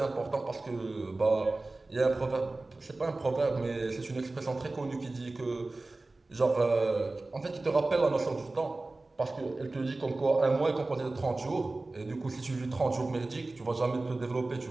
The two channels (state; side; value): quieter; left; 3.1 dB